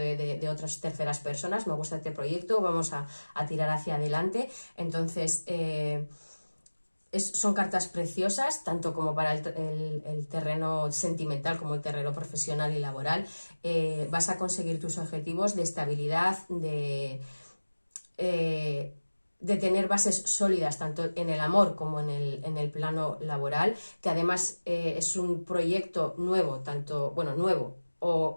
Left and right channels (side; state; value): both; inverted; correlation -1.00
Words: otras terceras personas, me gusta este proyecto, vamos a tirar hacia adelante. Entonces... son cartas preciosas, tanto como para el terreno sentimental como el terreno profesional y laboral. Vas a conseguir tus objetivos de estabilidad, de tener bases sólidas tanto en el amor como en el plano laboral, que además es un proyecto nuevo, nuevo,